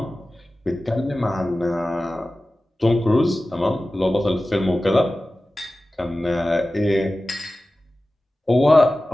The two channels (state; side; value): normal; both; correlation 0.96